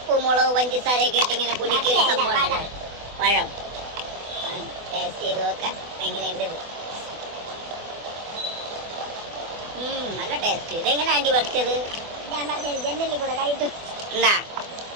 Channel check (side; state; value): left; late; 24 ms